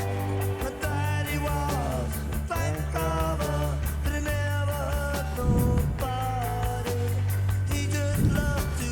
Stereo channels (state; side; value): identical; both; correlation 1.00